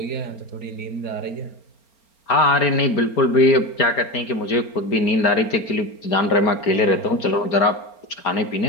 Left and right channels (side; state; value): right; late; 4.3 ms